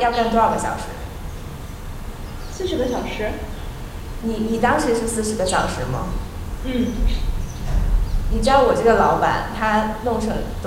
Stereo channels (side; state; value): both; identical; correlation 1.00